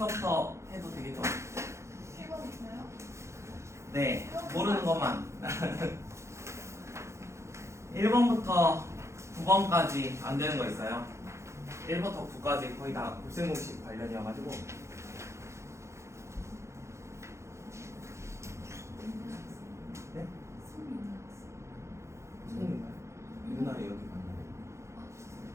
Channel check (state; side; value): late; left; 0.14 ms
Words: 해도 되겠죠? 1번부터요? 네, 모르는 것만. 1번부터 9번까지 안 되는 거 있어요. 1부터 9까지 거의 다 곱셈 공식 관련이어가지고. 네? 손인가요? 누나를 여기 만나요.